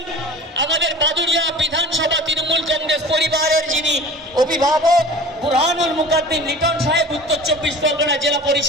আমাদের বাদুড়িয়া বিধানসভা তৃণমূল কংগ্রেস পরিবারের যিনি অভিভাবক বুরহানুল মুকাদ্দিম লিটন সাহেব, উত্তর 24 পরগনা জেলা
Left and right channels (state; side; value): normal; both; correlation 0.41